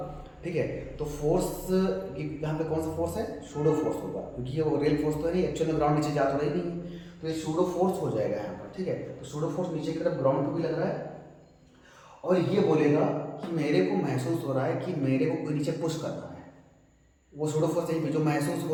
ठीक है, तो फोर्स यहाँ पे कौन सा फोर्स है, सूडो फोर्स होगा, क्योंकि ये रियल फोर्स तो है नहीं, एक्चुअल में ग्राउंड नीचे जा तो रही नहीं, तो ये सूडो फोर्स हो जाएगा यहाँ पर। ठीक है, तो सूडो फोर्स नीचे की तरफ ग्राउंड पे भी लग रहा है, और ये बोलेगा कि मेरे को महसूस हो रहा है कि मेरे को कोई नीचे पुश कर रहा है, वो सूडो फोर्स है, जो महसूस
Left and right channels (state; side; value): identical; both; correlation 1.00